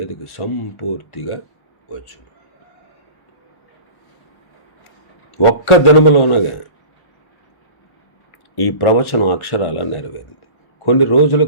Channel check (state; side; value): late; right; 1.1 ms